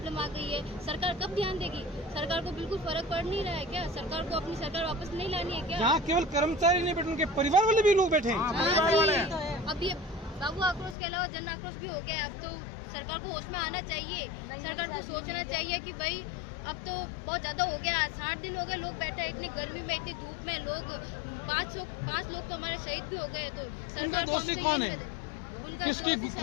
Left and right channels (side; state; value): right; drops out; at 11.0 s